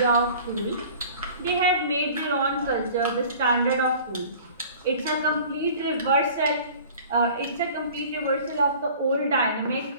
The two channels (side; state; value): both; inverted; correlation -0.45